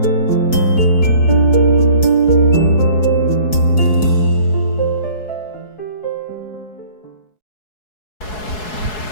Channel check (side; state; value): right; late; 4.7 ms